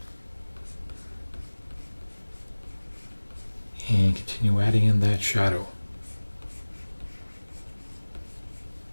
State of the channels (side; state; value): both; inverted; correlation -1.00